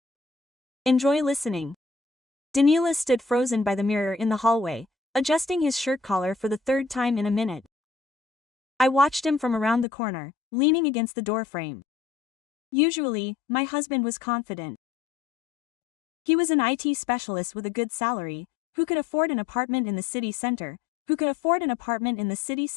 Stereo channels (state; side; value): drops out; right; at 9.9 s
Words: Enjoy listening. Danila stood frozen by the mirror in the hallway, adjusting his shirt collar for the third time in a minute. I watched him from around the corner, leaning against the doorframe. Usually, my husband was confident. He was an IT specialist with a good salary, who could afford an apartment in the city center,